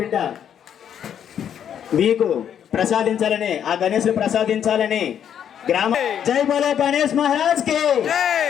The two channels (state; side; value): quieter; right; 9.1 dB